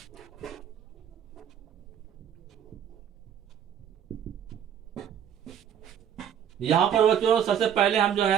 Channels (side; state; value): left; quieter; 9.0 dB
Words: यहां पर बच्चों सबसे पहले हम जो